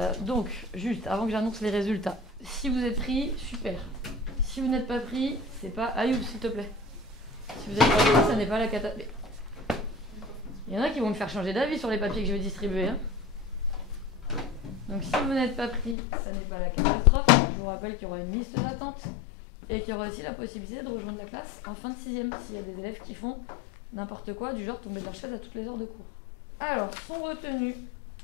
Donc, juste, avant que j'annonce les résultats, si vous êtes pris, super. Si vous n'êtes pas pris, c'est pas... Ayoub, s'il te plaît. Si vous êtes pas pris, ça n'est pas la cata... Il y en a qui vont me faire changer d'avis sur les papiers que je vais distribuer. Hein. Donc, si vous n'êtes pas pris, ça n'est pas la catastrophe. Je vous rappelle qu'il y aura une liste d'attente et qu'il y aura aussi la possibilité de rejoindre la classe en fin de 6e s'il y a des élèves qui font n'importe quoi, du genre tomber de leur chaise à toutes les heures de cours. Alors, sont retenus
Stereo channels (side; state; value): right; drops out; at 16.0 s